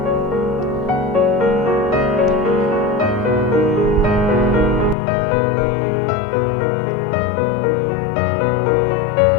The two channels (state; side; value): drops out; right; at 5.0 s